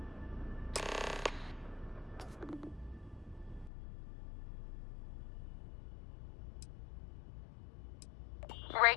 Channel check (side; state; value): right; drops out; at 3.7 s